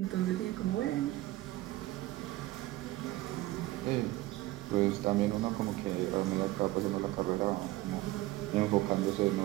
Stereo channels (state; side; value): quieter; left; 17.9 dB